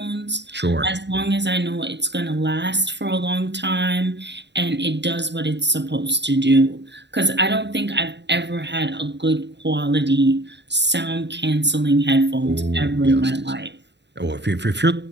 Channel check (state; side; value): late; left; 0.51 ms